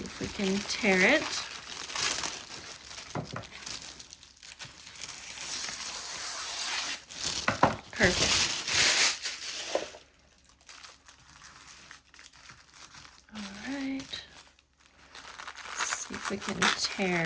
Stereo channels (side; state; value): both; identical; correlation 1.00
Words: if we can tear it. Perfect. All right. Let's see if we can